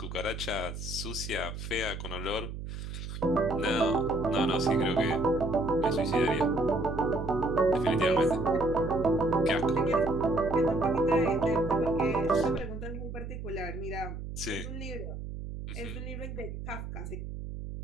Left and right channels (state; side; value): noise; right; hum, 8 dB below the sound